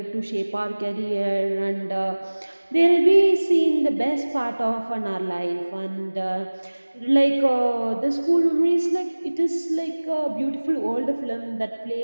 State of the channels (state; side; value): inverted; both; correlation -1.00